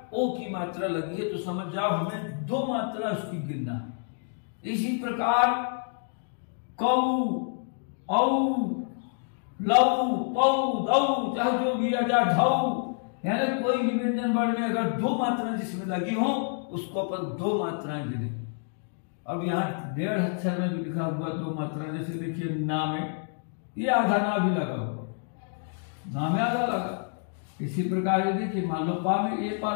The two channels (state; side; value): silent; right; 59 dB below the other